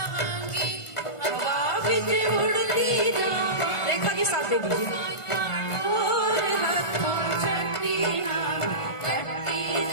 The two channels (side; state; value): right; late; 1.5 ms